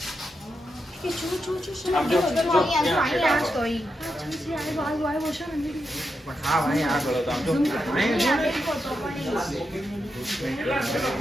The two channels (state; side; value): normal; both; correlation 0.85